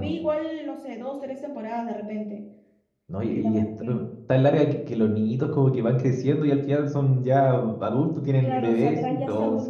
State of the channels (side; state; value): both; identical; correlation 1.00